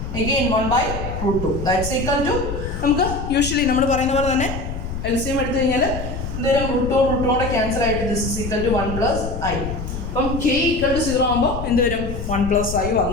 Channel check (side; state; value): left; noise; rumble, 6 dB below the sound